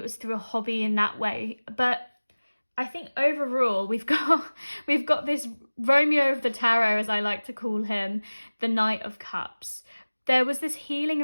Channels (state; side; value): inverted; both; correlation -1.00